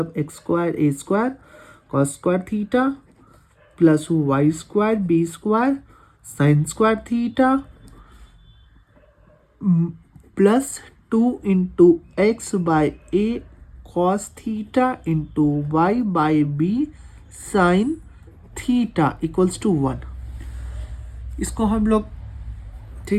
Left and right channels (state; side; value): identical; both; correlation 1.00